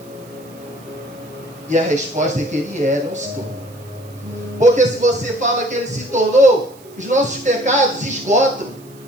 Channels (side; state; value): right; noise; hiss, 26 dB below the sound